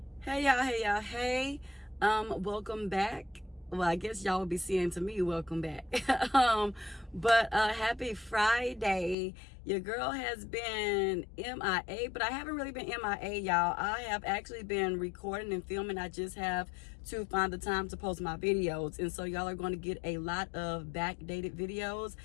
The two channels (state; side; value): drops out; right; at 9.2 s